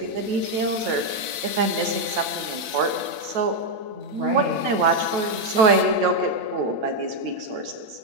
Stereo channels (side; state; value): left; late; 8.5 ms